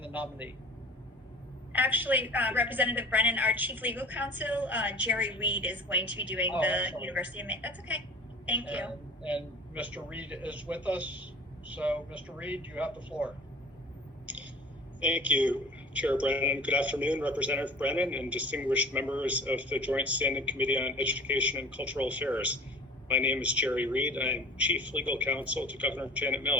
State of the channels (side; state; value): both; normal; correlation 0.43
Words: nominee. Actually, Representative Brennan, our chief legal counsel, Jerry Reed, is going to be doing the University of Maine. That's okay. Thank you. And Mr. Reed is with us. So, Mr. Reed, you have the floor. Thank you, Chair Brennan. Good afternoon, Representative Brennan and distinguished members of the Joint Standing Committee on Education and Cultural Affairs. My name is Jerry Reed. I am Chief Legal Counsel to Governor Janet